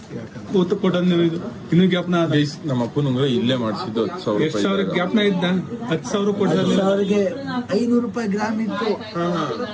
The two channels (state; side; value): identical; both; correlation 1.00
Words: ಯಾಕಂದ್ರೆ ಗೊತ್ತು ಕೊಟ್ಟದ್ ನೀವು. ಇದು ಇನ್ನೂ ಜ್ಞಾಪನ ನಮ್ಮ ಅಪ್ಪನ ಉಂಗುರ ಇಲ್ಲೇ ಮಾಡಿಸಿದ್ದು 10,000 ಎಷ್ಟು ಸಾವಿರ ರೂಪಾಯಿ. ಜ್ಞಾಪನ ಇದ್ದ? 10,000 ಕೊಟ್ಟಿಲ್ಲ. ಅವ್ರಿಗೆ 500 ರೂಪಾಯಿ ಗ್ರಾಮ್ ಇತ್ತು.